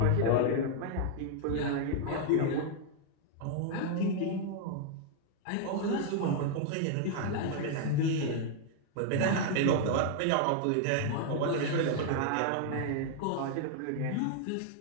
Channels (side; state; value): both; different; correlation 0.00